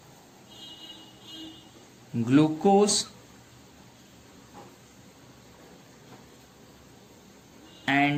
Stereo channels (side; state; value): both; identical; correlation 1.00